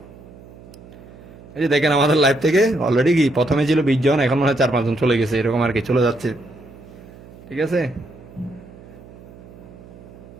এই যে দেখেন আমাদের লাইফ থেকে অলরেডি কি প্রথমে ছিল 20 জন, এখন মনে হয় 4 5 জন চলে গেছে, এরকম আর কি চলে যাচ্ছে। ঠিক আছে,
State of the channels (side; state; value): right; noise; hum, 20 dB below the sound